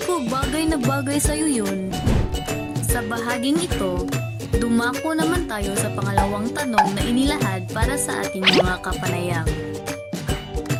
ko, bagay na bagay sa'yo yun. Sa bahaging ito, dumako naman tayo sa pangalawang tanong na inilahad para sa ating mga kapanayam.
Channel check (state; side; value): identical; both; correlation 1.00